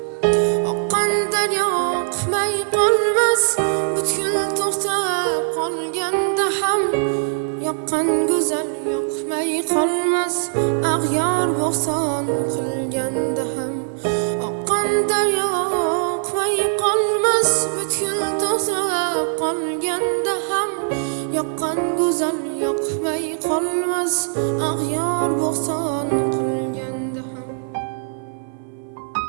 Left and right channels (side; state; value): left; silent; 57 dB below the other